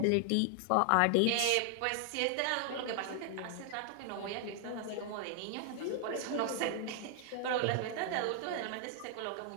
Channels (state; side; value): different; both; correlation 0.00